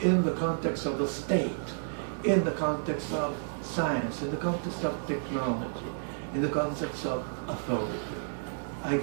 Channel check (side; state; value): left; silent; digital silence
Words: the context of the state, in the context of science, in the context of technology, in the context of authority. I